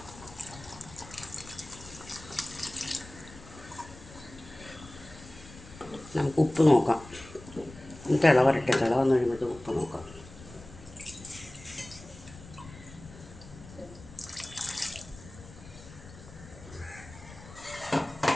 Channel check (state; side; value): noise; left; rumble, 18 dB below the sound